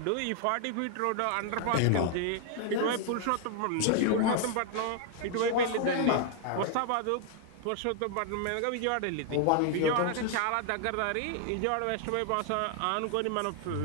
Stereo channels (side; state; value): both; different; correlation 0.00